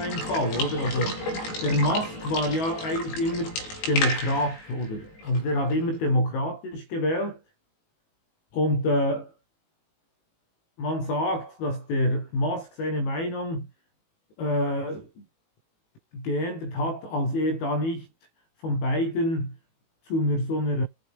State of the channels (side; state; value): right; late; 18 ms